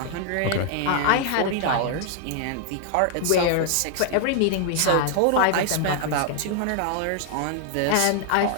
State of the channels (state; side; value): different; both; correlation 0.00